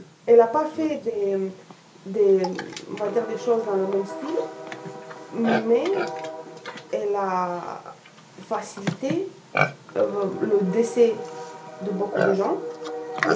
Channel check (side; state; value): both; identical; correlation 1.00